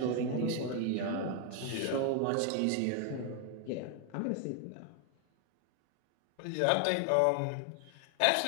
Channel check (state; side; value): different; both; correlation 0.00